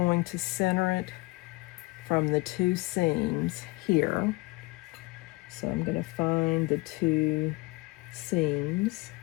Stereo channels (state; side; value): quieter; right; 24.0 dB